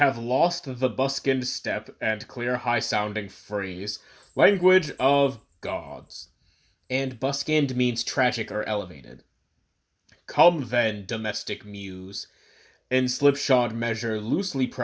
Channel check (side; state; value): both; identical; correlation 1.00